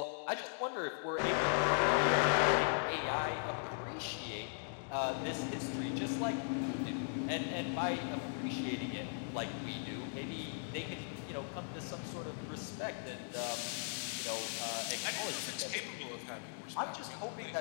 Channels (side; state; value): right; silent; digital silence